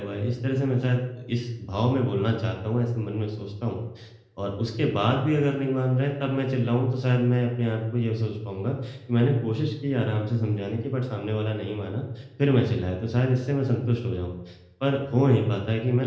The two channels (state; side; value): identical; both; correlation 1.00